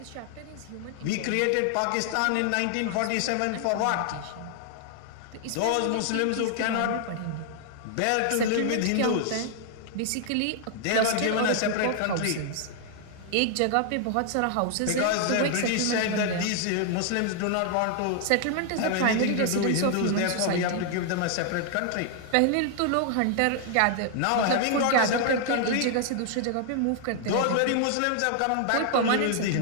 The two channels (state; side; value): different; both; correlation 0.00